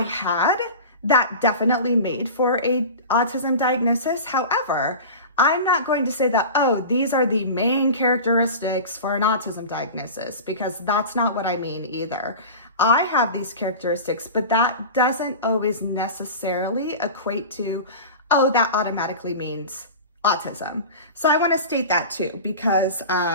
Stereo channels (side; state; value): both; inverted; correlation -0.32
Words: that definitely made for a autism diagnosis. However, I'm not going to say that, oh, these are the main characteristics for an autism diagnosis, because that's not what I mean either. I have these characteristics, but that doesn't always necessarily equate to, oh, that automatically means autism. So I want to state that too, because